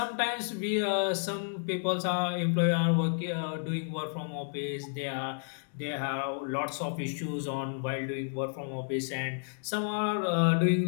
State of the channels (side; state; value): right; silent; digital silence